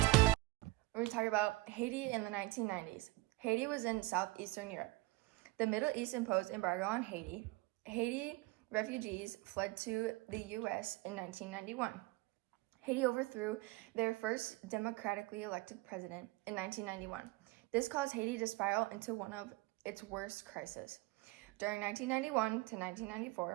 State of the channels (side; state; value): left; quieter; 21.4 dB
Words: We're talking about Haiti in the 1990s. Haiti was in southeastern Europe. The Middle East imposed embargo on Haiti. Haiti refugees fled to the U.S. in 1991. Haiti overthrew their first democratically elected president in 1991. This caused Haiti to spiral into one of its worst crises. During 1991 to